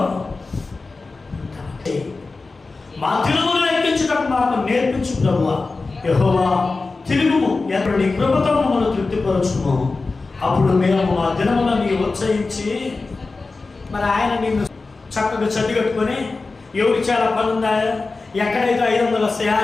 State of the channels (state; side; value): quieter; right; 3.8 dB